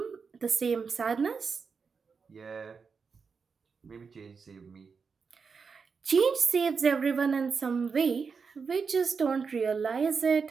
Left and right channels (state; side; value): quieter; left; 5.4 dB